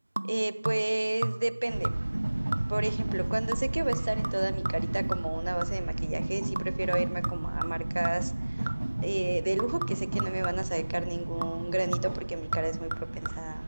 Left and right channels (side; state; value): both; inverted; correlation -1.00